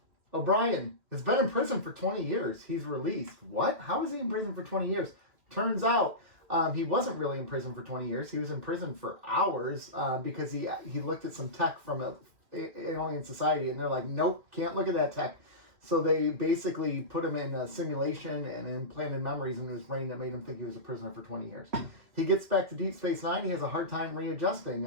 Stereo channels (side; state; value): left; late; 2.4 ms